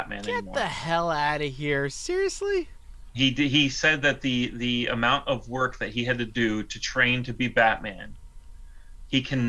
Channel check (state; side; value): identical; both; correlation 1.00